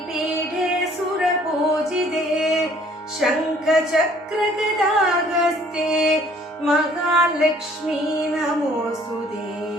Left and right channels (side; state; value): both; normal; correlation 0.58